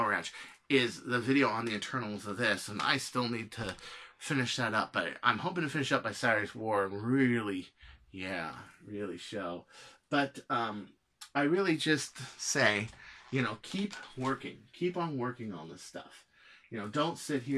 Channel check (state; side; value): identical; both; correlation 1.00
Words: Ranch is the video on the internals of this. And I still need to finish that up. But I'm hoping to finish up by Saturday's War and really... yeah, really show. But I really just say, you know, keep working. Keep on working on this stuff. You know, don't sit